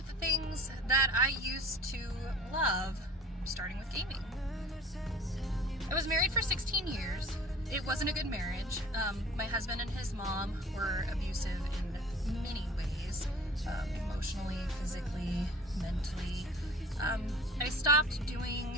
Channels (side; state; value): both; normal; correlation 0.45